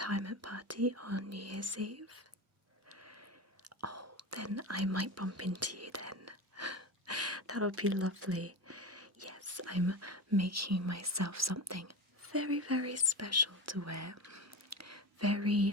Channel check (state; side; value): normal; both; correlation 0.24